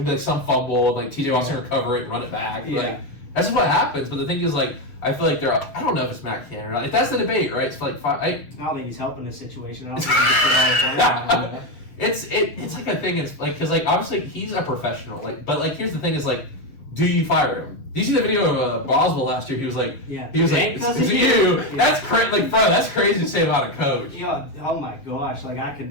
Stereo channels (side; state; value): right; late; 7.3 ms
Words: going to be like some fumble, like TJ Watt's going to recover it and run it back. Yeah. Like, that's just what happens. But the thing is, like, I feel like I don't know if it's Matt Cannon or not. Like, that's the debate, right? It's like I don't think he's helping the situation. I don't think he's It's like a thing. It's like, because like obviously he's a professional. Like, but like here's the thing: is like, do you fire him? Do you see the video of Boswell last year? He was like, it's you. Yeah. That's crazy. Like, bro, that's crazy to say about a coach. Yeah. Oh my gosh. Like, I could